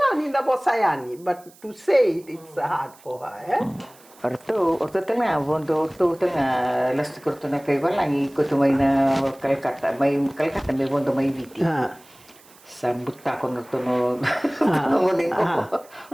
da bosayani, but to say it's hard for her. Orto tengah bondo orto tengah las korto na kay walangi kutu mai na Calcutta mai bondo mai viti. Sambut ko no tono ngoling ko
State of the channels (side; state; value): right; noise; hiss, 26 dB below the sound